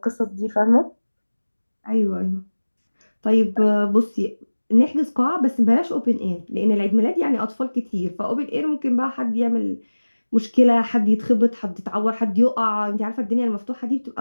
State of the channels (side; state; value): both; inverted; correlation -1.00